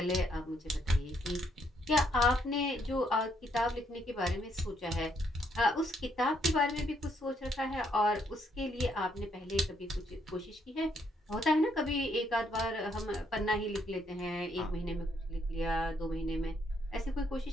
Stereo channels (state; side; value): normal; both; correlation 0.72